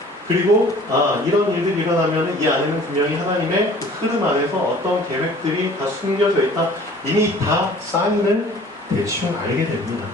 그리고 이런 일들이 일어나면 이 안에는 분명히 하나님의 그 흐름 안에서 어떤 계획들이 다 숨겨져 있다. 이미 다 사인을 대충 알게 됩니다.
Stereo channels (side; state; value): both; normal; correlation 0.49